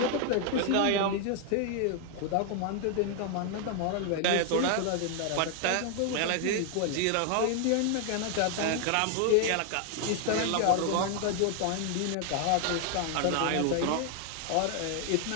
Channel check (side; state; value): both; different; correlation 0.00